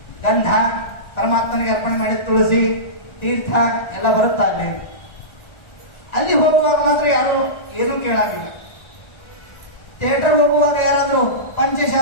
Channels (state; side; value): late; right; 1.4 ms